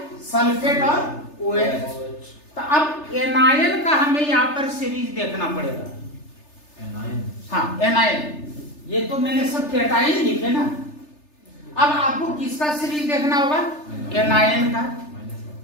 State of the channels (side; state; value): right; late; 3.3 ms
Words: सल्फेट और OH। तो अब एनायन का हमें यहां पर सीरीज देखना पड़ेगा। हाँ, एनायन, ये तो मैंने सब कैटायन लिखे ना। अब आपको किसका सीरीज देखना होगा, एनायन का।